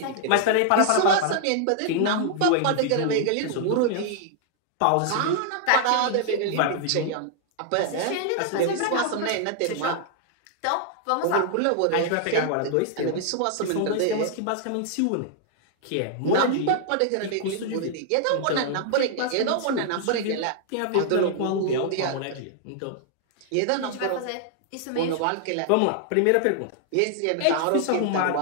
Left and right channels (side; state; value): both; different; correlation 0.00